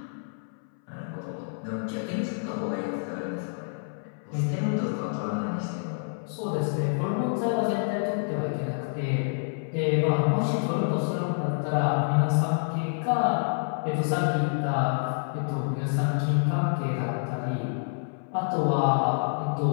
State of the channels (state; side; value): silent; right; 60 dB below the other